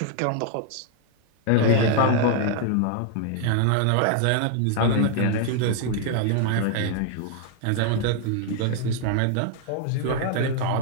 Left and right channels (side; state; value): both; different; correlation 0.00